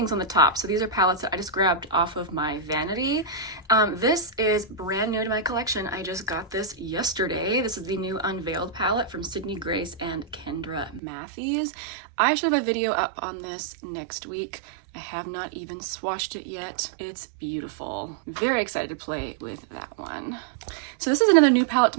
on the top. So these are palettes that I just grabbed off of my Vanity. This is brand new to my collection. I just got this yesterday. This is the new Unveiled palette from Sydney Grace and Kendra Matthews. I should have a video up on this next week. I have not even swatched it yet. It's beautiful. Very excited to play with that one. So this is another new palette to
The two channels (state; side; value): drops out; left; at 11.0 s